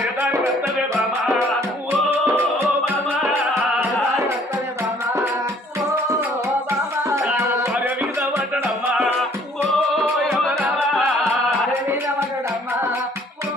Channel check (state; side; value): normal; both; correlation 0.59